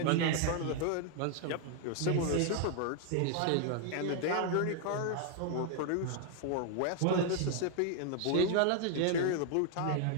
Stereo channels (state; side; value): different; both; correlation 0.00